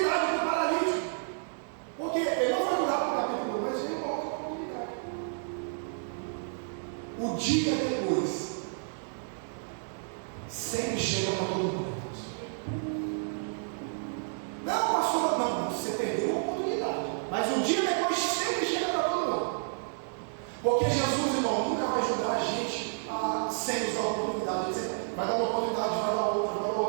para o paralítico. Porque ele não foi curar para o capítulo 1, mas veio uma outra oportunidade. O dia depois sempre chega para todo mundo. Não, pastor, não, você perdeu a oportunidade. Mas o dia depois sempre chega para todo mundo. Porque Jesus, irmão, nunca vai ajudar a gente sem nos dar a oportunidade. Vai dar uma oportunidade, vai dar outra, vai dar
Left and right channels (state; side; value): silent; left; digital silence